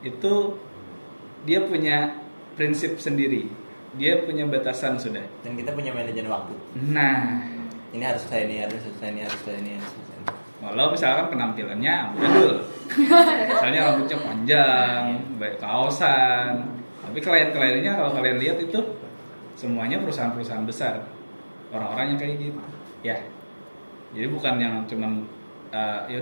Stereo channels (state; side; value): inverted; both; correlation -1.00